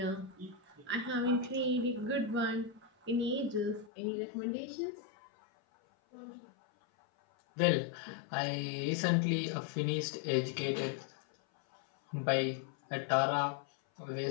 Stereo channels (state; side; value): drops out; right; at 3.9 s